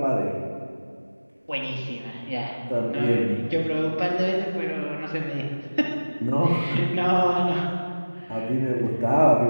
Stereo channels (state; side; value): inverted; both; correlation -1.00